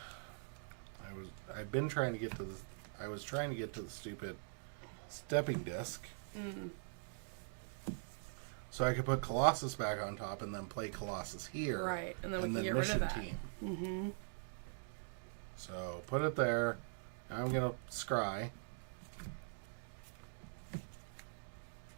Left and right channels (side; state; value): left; silent; digital silence